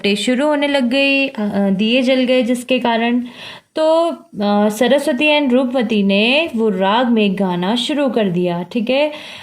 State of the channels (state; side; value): identical; both; correlation 1.00